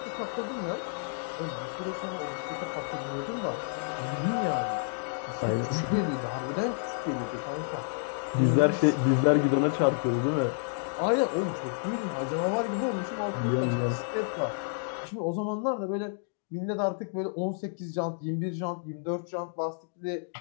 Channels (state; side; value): silent; right; digital silence